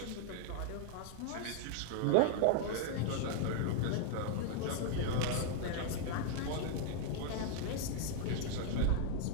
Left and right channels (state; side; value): different; both; correlation 0.00